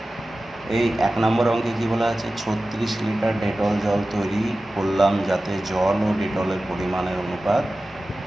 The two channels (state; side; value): normal; both; correlation 0.95